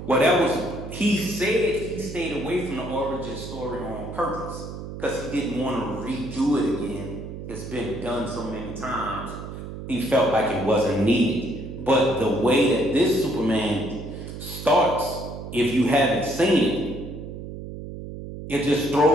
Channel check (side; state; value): right; noise; hum, 9 dB below the sound